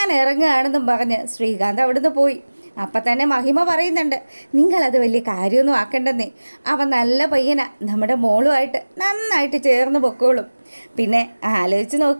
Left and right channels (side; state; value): both; inverted; correlation -1.00